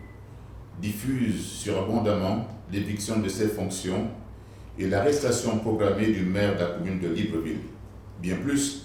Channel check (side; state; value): both; identical; correlation 1.00